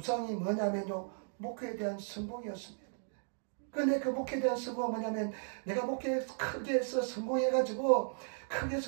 뭐냐면요, 목회에 대한 성공이었습니다. 그런데 그 목회에 대한 성공은 뭐냐면, 내가 목회에 크게 해서 성공해가지고, 크게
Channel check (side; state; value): left; silent; digital silence